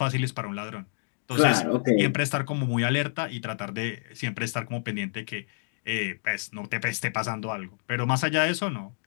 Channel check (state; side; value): silent; right; digital silence